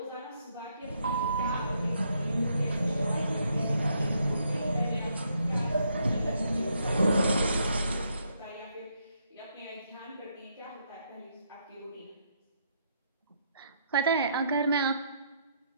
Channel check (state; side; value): inverted; both; correlation -0.74